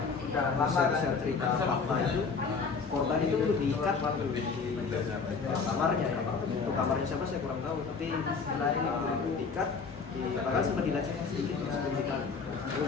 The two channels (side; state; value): right; quieter; 5.1 dB